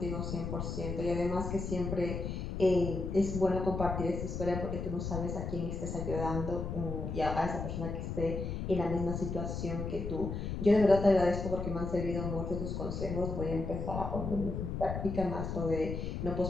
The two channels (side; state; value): left; noise; rumble, 4 dB below the sound